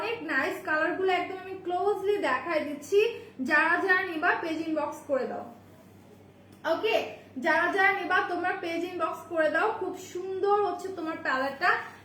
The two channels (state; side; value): identical; both; correlation 1.00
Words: নাইস, কালার গুলো একদম আমি ক্লোজলি দেখাই দিচ্ছি। যারা যারা নিবা পেজ ইনবক্স করে দাও। ওকে, যারা যারা নিবা তোমরা পেজ ইনবক্স করে দাও। খুব সুন্দর হচ্ছে তোমার প্যালেটটা,